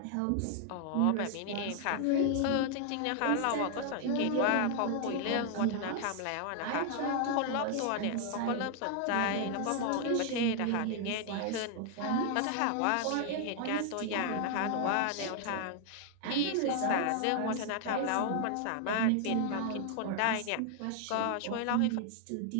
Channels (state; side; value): different; both; correlation 0.00